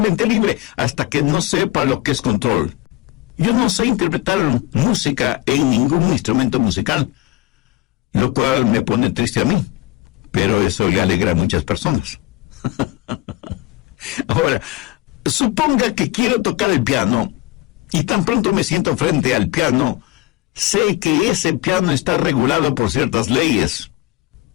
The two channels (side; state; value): right; quieter; 18.0 dB